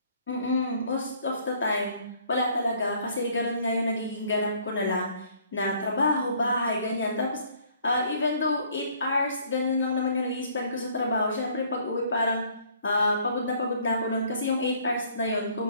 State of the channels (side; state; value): both; inverted; correlation -0.60